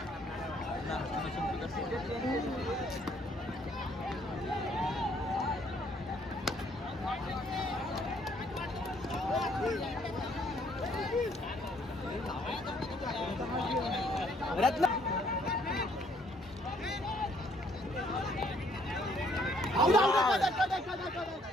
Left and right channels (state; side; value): normal; both; correlation 0.65